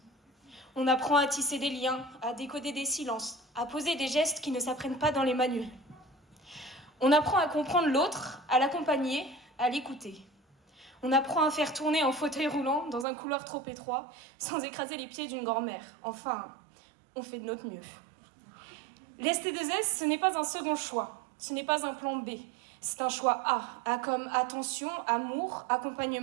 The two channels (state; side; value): drops out; left; at 13.1 s